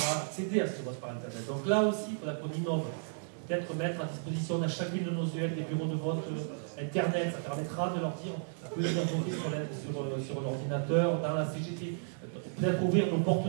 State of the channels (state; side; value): silent; left; 56 dB below the other